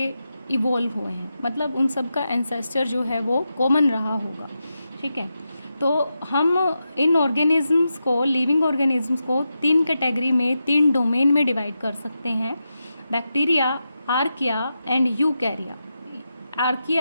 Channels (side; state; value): both; inverted; correlation -0.88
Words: इवॉल्व हुए हैं, मतलब उन सब का एंसेस्टर जो है वो कॉमन रहा होगा। ठीक है, तो हम इन ऑर्गेनिजम्स को, लिविंग ऑर्गेनिजम्स को तीन कैटेगरी में, तीन डोमेन में डिवाइड कर सकते हैं: bacteria, archaea and यूकैरिया।